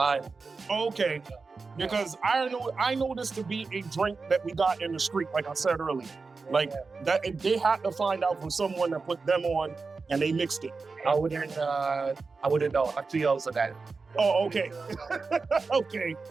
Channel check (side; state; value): left; quieter; 4.3 dB